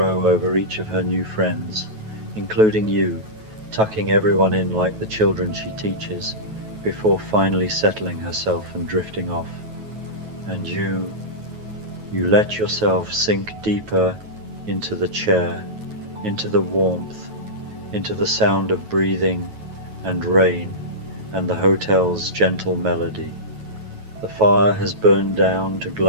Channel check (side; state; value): left; late; 9.2 ms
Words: over each of her new friends, including you, tucking everyone in like the children she teaches, before finally settling herself and drifting off. And you let yourself sink deeper into the chair, into the warmth, into the sound of breathing and rain and the hotel's gentle melody. The fire has burned down to